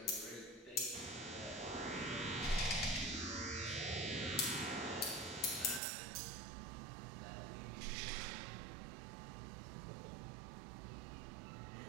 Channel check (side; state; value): left; drops out; at 5.8 s